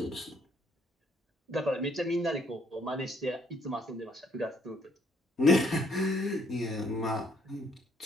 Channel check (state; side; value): normal; both; correlation 0.67